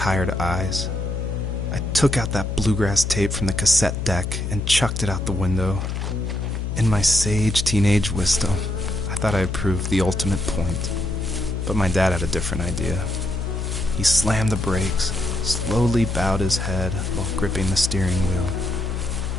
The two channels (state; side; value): noise; left; hum, 3 dB below the sound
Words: eyes. I took out that bluegrass tape from the cassette deck and chucked it out the window. In my sage teenage wisdom, I thought I had proved the ultimate point. But my dad had a different idea. He slammed the brakes, slowly bowed his head while gripping the steering wheel,